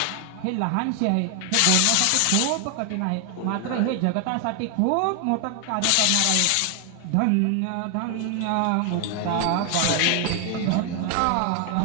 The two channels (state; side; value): different; both; correlation 0.00